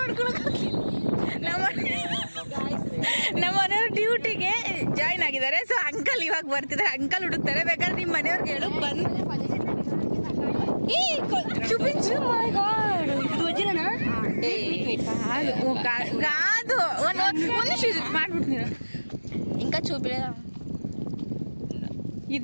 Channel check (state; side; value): inverted; both; correlation -1.00